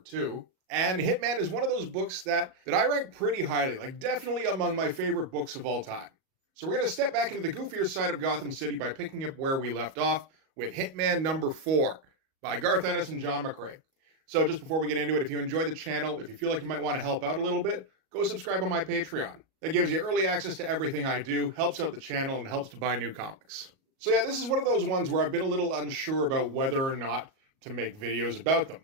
And Hitman is one of those books that I rank pretty highly, like definitely among my favorite books of all time. So we're going to step back into the goofier side of Gotham City by picking up where we left off with Hitman #4 by Garth Ennis and John McCrae. So just before we get into it, if you enjoy the channel, if you feel like you might want to help out a little bit, go subscribe on my Patreon. That gives you early access to everything I do, helps out the channel, and helps to buy new comics. So yeah, this is one of those ones where I've been a little unsure about whether or not to make videos about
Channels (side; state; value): left; late; 37 ms